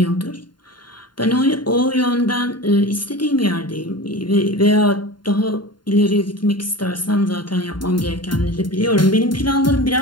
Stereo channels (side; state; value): right; late; 0.71 ms